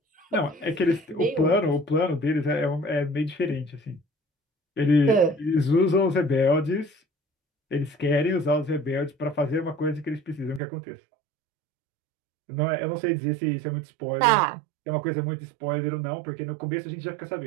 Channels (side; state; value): left; drops out; at 10.6 s